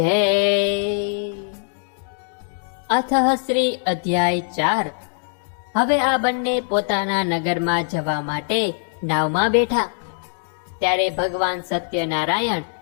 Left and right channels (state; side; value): silent; right; digital silence